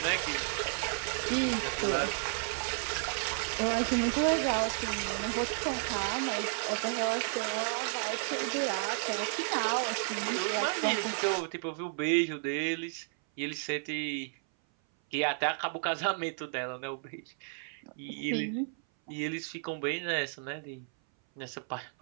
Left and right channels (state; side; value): silent; left; 56 dB below the other